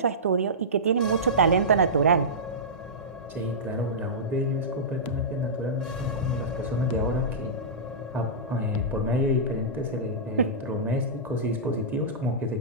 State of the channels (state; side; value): normal; both; correlation -0.16